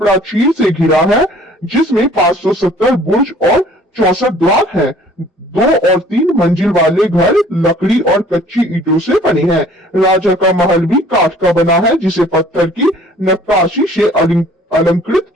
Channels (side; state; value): both; normal; correlation 0.53